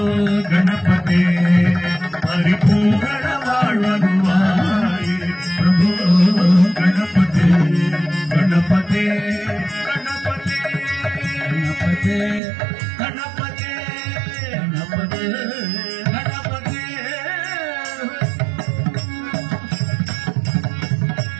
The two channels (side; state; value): left; drops out; at 12.4 s